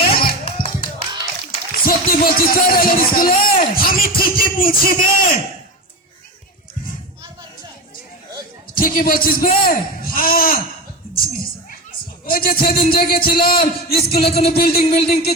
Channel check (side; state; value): both; normal; correlation 0.23